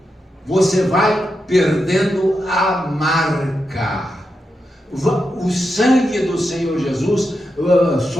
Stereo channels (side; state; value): both; normal; correlation 0.87